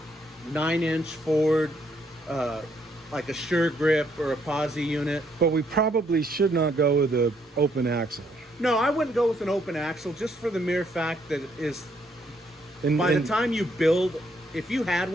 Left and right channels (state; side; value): normal; both; correlation 0.71